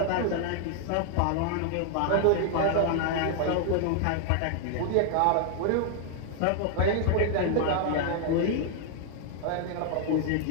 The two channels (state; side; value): different; both; correlation 0.00